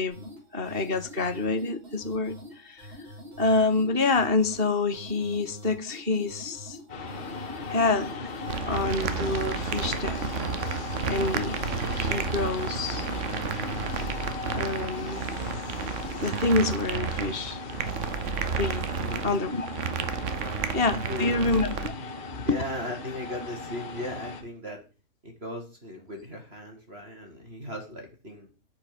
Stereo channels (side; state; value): left; late; 2.7 ms